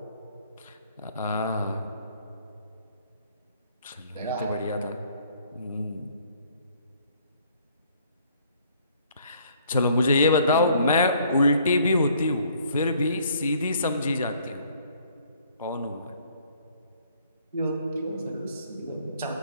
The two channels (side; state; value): both; inverted; correlation -0.61